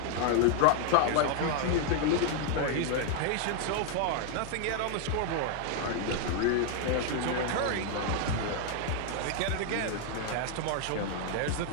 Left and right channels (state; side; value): different; both; correlation 0.00